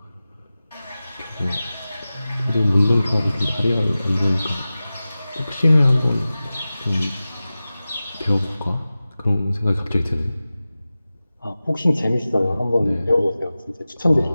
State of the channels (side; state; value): both; inverted; correlation -0.96